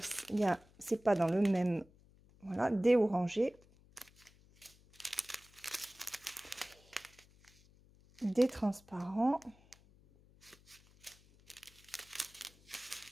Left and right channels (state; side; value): noise; left; hum, 27 dB below the sound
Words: c'est pas dans le même... Voilà, des orangés. Des transparents.